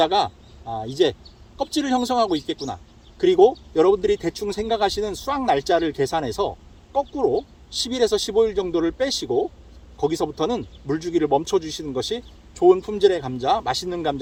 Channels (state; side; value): identical; both; correlation 1.00